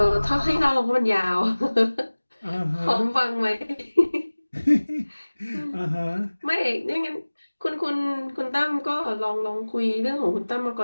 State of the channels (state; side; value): inverted; both; correlation -1.00